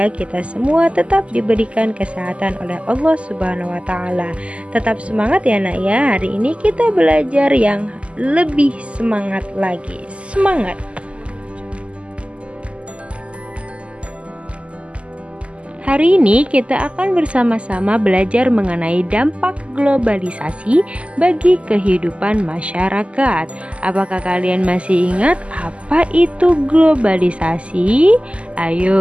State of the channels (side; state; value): left; late; 0.057 ms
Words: kita semua tetap diberikan kesehatan oleh Allah Subhanahu wa taala. Tetap semangat ya Nak ya. Hari ini kita belajar yang lebih semangat lagi. Semangat. Hari ini kita akan bersama-sama belajar mengenai dampak globalisasi bagi kehidupan masyarakat. Apakah kalian masih ingat apa itu globalisasi?